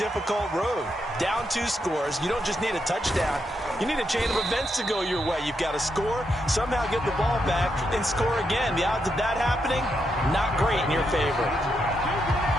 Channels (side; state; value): both; normal; correlation 0.81